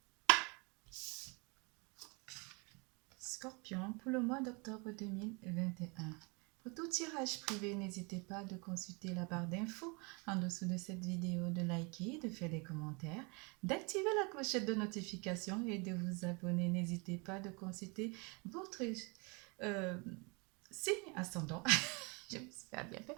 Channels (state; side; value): quieter; left; 30.7 dB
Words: Scorpions pour le mois d'octobre 2021. Pour tout tirage privé, n'hésitez pas de consulter la barre d'infos en dessous de cette vidéo, de liker, de faire des commentaires, d'activer la clochette de notification et de vous abonner. N'hésitez pas de consulter votre signe ascendant. Je me suis bien fait.